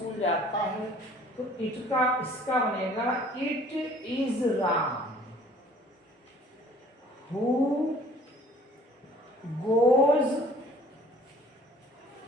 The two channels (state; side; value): normal; both; correlation 0.53